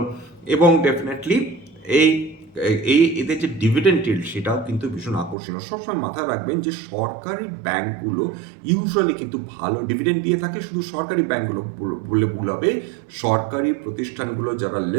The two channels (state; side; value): drops out; left; at 5.4 s